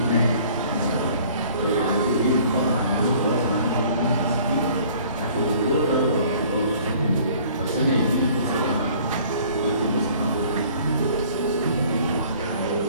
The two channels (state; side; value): inverted; both; correlation -0.53